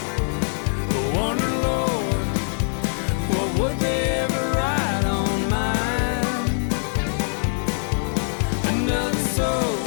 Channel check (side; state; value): right; silent; digital silence